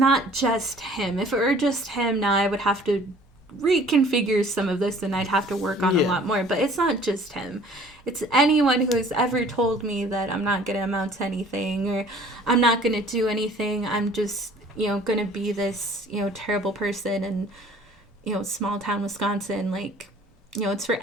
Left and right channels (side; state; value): both; normal; correlation 0.52